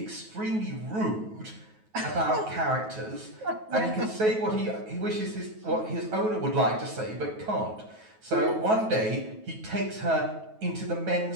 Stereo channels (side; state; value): left; late; 9.3 ms